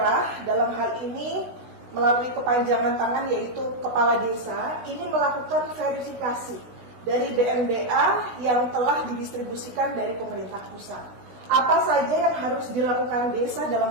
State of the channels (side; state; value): left; late; 16 ms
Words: dalam hal ini melalui kepanjangan tangan yaitu kepala desa ini melakukan verifikasi dari BNBA yang telah didistribusikan dari pemerintah pusat. Apa saja yang harus dilakukan desa dalam